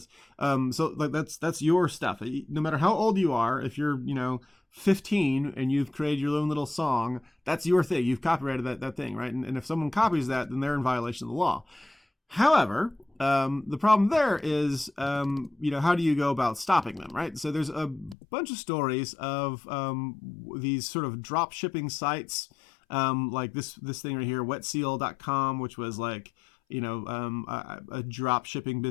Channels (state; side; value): drops out; right; at 18.2 s